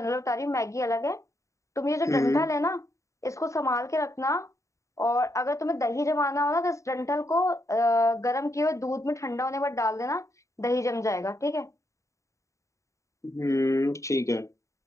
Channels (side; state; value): right; late; 0.15 ms